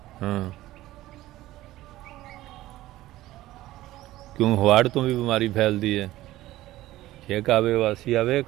ਹਾਂ, ਕਿਉਂ ਹਵਾੜ ਤੋਂ ਵੀ ਬਿਮਾਰੀ ਫੈਲਦੀ ਹੈ। ਛੇਕ ਆਵੇ ਵਾਸੀ ਆਵੇ,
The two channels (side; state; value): left; quieter; 16.0 dB